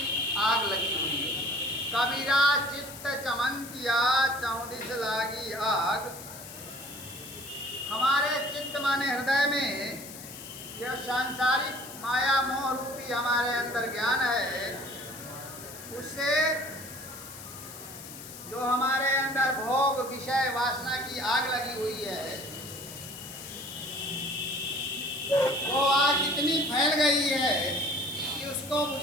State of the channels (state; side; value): noise; left; hiss, 13 dB below the sound